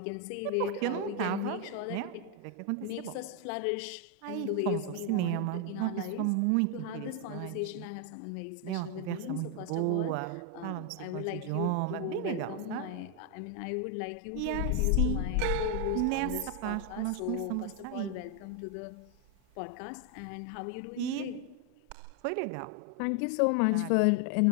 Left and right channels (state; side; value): different; both; correlation 0.01